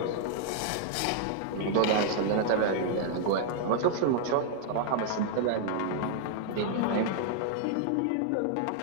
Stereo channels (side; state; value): both; different; correlation -0.01